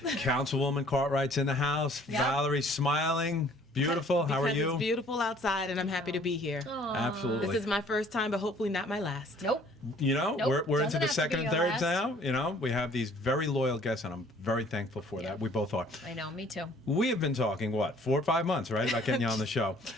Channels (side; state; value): both; normal; correlation 0.56